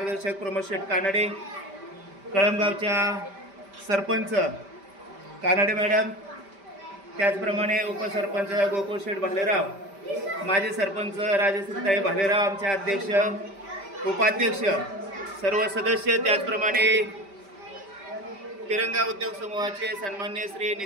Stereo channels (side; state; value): left; late; 5.1 ms